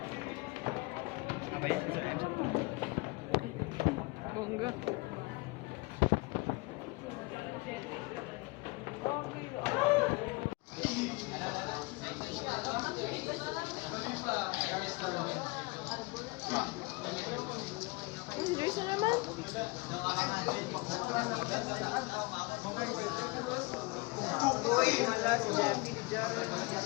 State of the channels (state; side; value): quieter; right; 25.7 dB